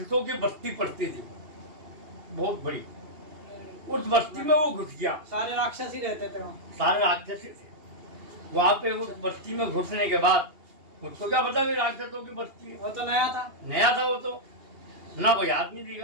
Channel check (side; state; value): left; late; 2.8 ms